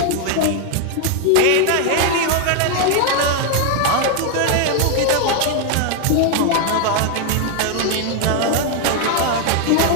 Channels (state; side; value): different; both; correlation 0.01